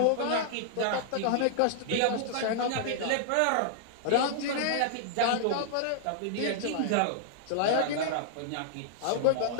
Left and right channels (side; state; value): both; different; correlation -0.01